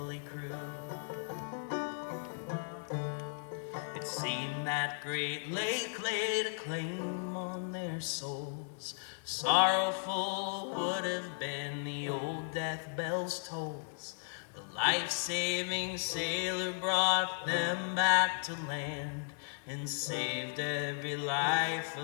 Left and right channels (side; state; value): right; silent; digital silence